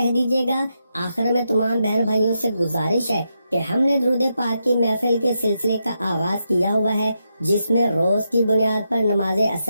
दीजिएगा। आखिर में तमाम बहन भाइयों से गुजारिश है कि हमने दुरूद पाक की महफिल के सिलसिले का आगाज किया हुआ है, जिसमें रोज की बुनियाद पर नमाज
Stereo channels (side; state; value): both; inverted; correlation -0.84